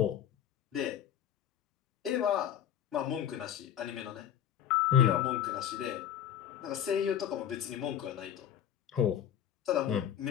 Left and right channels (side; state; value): right; quieter; 9.8 dB